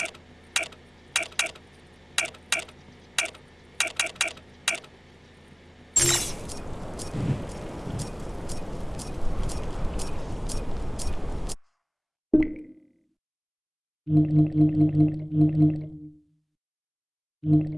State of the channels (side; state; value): both; identical; correlation 1.00